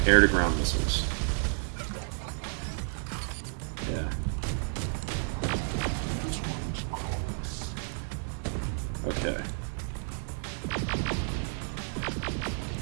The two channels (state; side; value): silent; left; 57 dB below the other